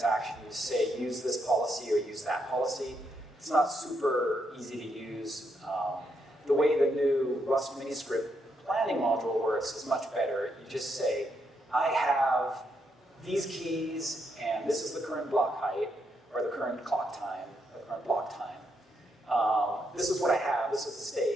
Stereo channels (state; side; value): normal; both; correlation 0.79